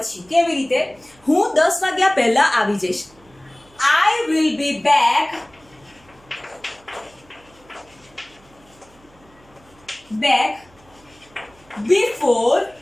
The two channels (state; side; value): noise; right; hum, 29 dB below the sound